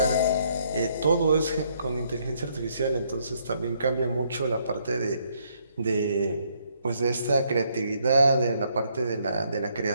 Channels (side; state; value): both; inverted; correlation -0.70